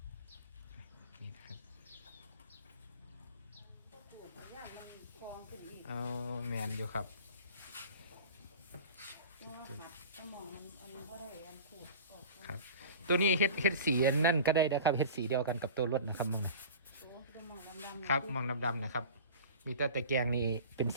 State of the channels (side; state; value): both; inverted; correlation -0.37